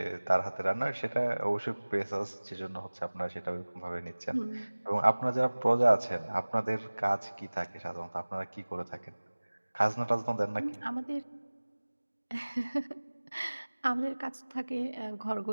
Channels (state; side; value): inverted; both; correlation -1.00